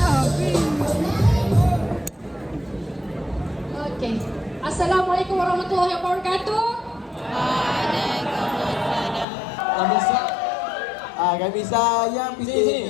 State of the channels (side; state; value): right; drops out; at 9.2 s